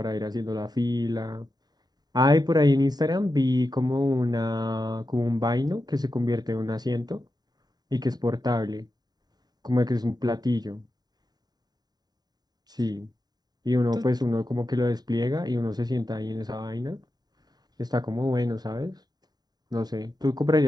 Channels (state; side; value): late; left; 0.20 ms